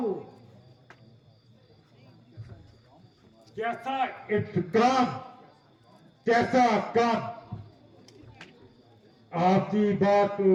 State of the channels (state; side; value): identical; both; correlation 1.00